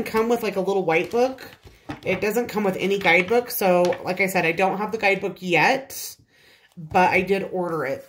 come with like a little white book. It doesn't come with any guidebook. So like I said, I don't have the guidebook yet, but I did order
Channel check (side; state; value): both; identical; correlation 1.00